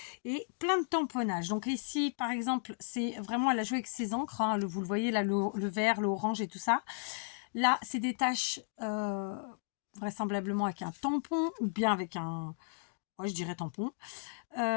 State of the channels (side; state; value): right; silent; digital silence